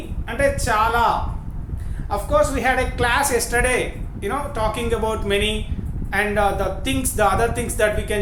అంటే చాలా. Of course we had a class yesterday talking about many and the other things that we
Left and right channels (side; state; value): both; identical; correlation 1.00